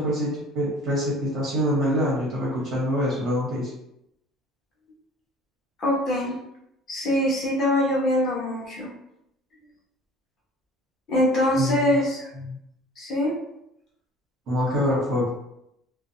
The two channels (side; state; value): both; normal; correlation 0.47